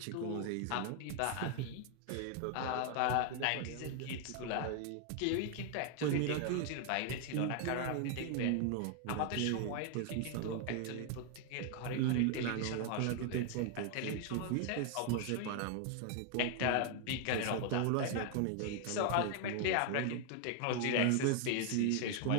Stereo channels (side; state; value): both; different; correlation 0.00